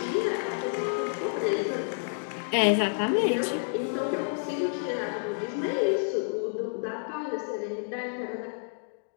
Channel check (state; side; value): silent; right; digital silence